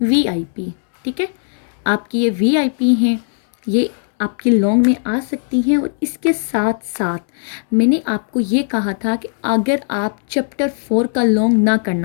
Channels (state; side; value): silent; right; digital silence